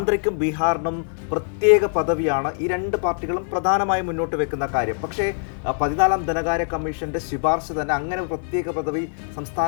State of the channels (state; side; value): silent; right; 58 dB below the other